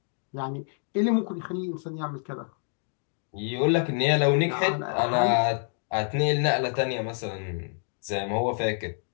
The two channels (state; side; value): silent; right; digital silence